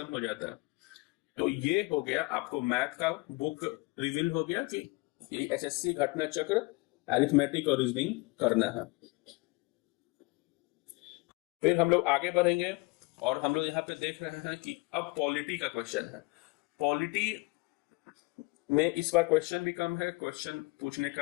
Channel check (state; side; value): quieter; right; 25.7 dB